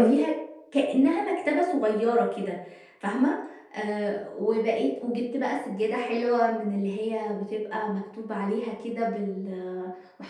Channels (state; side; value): identical; both; correlation 1.00